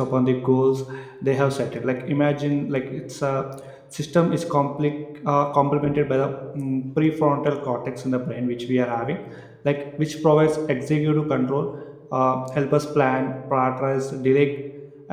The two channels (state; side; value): identical; both; correlation 1.00